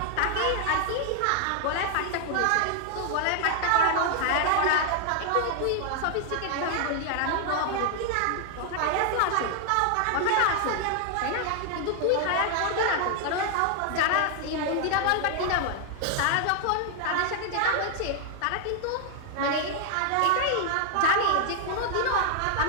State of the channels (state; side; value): different; both; correlation 0.00